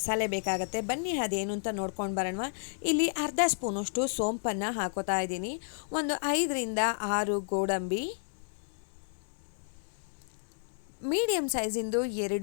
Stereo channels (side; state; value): right; silent; 57 dB below the other